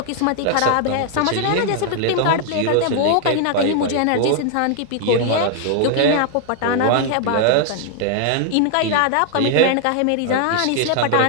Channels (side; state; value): both; different; correlation 0.00